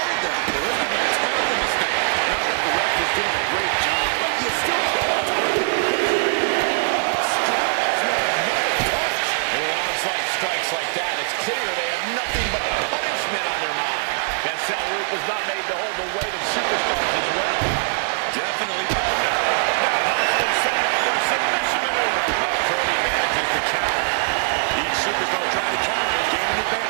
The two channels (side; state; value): left; silent; digital silence